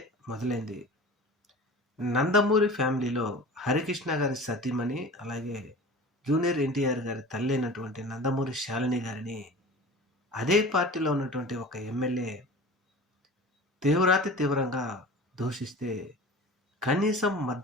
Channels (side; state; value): both; normal; correlation 0.38